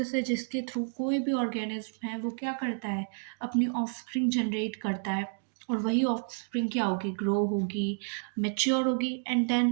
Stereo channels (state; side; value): silent; left; 58 dB below the other